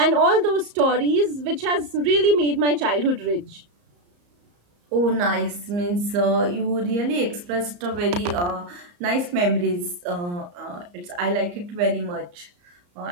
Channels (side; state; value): left; late; 34 ms